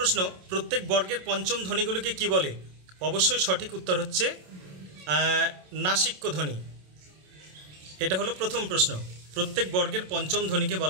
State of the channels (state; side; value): late; left; 27 ms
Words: প্রত্যেক বর্গের পঞ্চম ধ্বনিগুলিকে কি বলে? অবশ্যই সঠিক উত্তর হচ্ছে নাসিক্য ধ্বনি। এটা হলো প্রথম প্রশ্ন। প্রত্যেক বর্গের পঞ্চম ধ্বনিকে